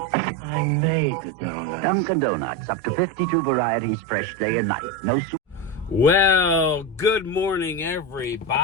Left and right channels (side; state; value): both; normal; correlation 0.16